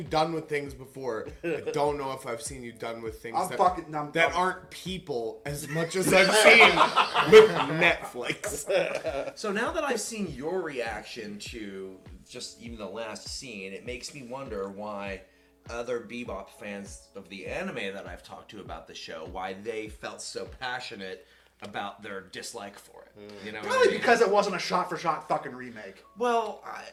done with things before. I don't know if I've seen you done with things that aren't people as much as I've seen with Netflix. So now that I've seen your reaction to just even the last scene, it makes me wonder why other Bebop fans of the anime that I've talked to about the show, why they felt so passionate about their dislike for it. You know, Probably because it wasn't a shot-for-shot fucking remake. Well,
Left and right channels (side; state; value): both; identical; correlation 1.00